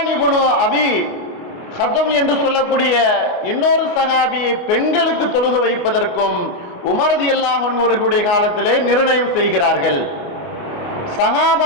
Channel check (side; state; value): right; late; 28 ms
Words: இப்னு அபி ஹதம் என்று சொல்லக்கூடிய இன்னொரு சஹாபியை பெண்களுக்கு தொழுக வைப்பதற்கும் உமர் ரலியல்லாஹு அன்ஹு அவர்களுடைய காலத்திலே நிர்ணயம் செய்கிறார்கள்.